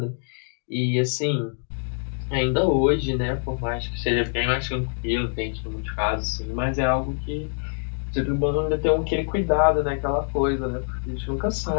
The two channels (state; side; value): silent; right; digital silence